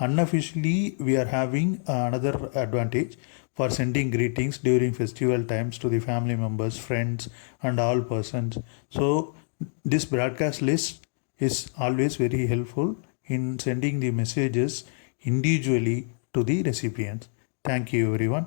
we are having another advantage for sending greetings during festival times to the family members, friends, and all persons. So this broadcast list is always very helpful in sending the messages individually to the recipients. Thank you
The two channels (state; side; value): silent; right; 61 dB below the other